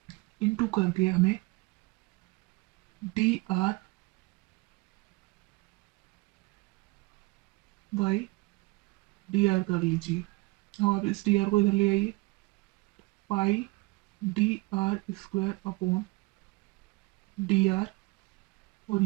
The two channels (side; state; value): left; quieter; 23.6 dB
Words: इनटू करके हमें D r by D R कर लीजिए। अब आप इस डी आर को इधर ले आइए, pi d r square upon d r, और